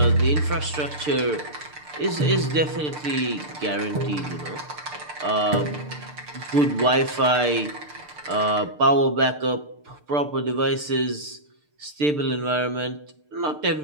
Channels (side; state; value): left; late; 6.7 ms